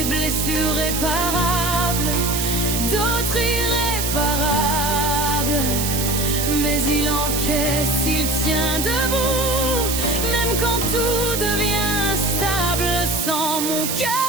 blessures réparables, d'autres irréparables. Mais il encaisse, il tient debout, même quand tout devient instable. Sans mon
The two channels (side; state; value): right; noise; hiss, 2 dB below the sound